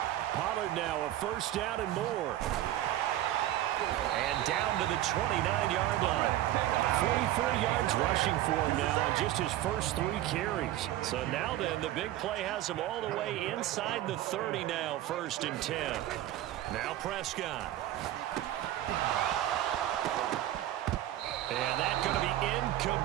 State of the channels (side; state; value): left; quieter; 13.7 dB